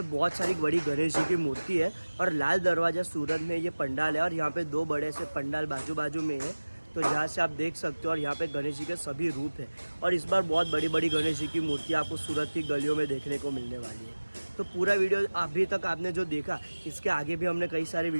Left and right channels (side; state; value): both; inverted; correlation -1.00